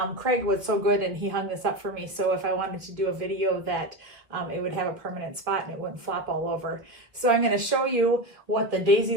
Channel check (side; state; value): left; late; 2.2 ms